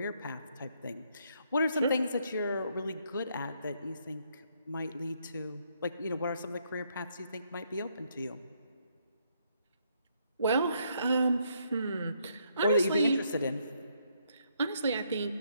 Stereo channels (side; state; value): both; inverted; correlation -0.73